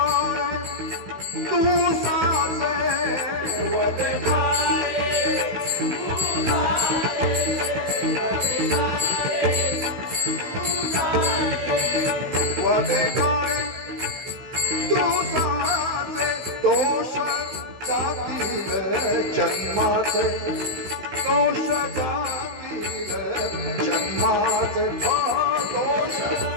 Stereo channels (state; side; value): late; left; 16 ms